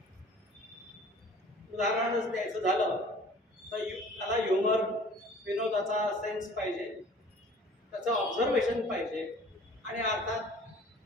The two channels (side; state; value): both; normal; correlation 0.48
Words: उदाहरणच द्यायचं झालं तर त्याला ह्युमर, विनोदाचा सेन्स पाहिजे, त्याचं ऑब्झर्वेशन पाहिजे आणि